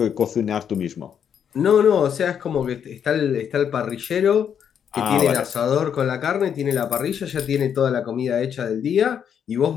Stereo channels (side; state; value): right; quieter; 8.2 dB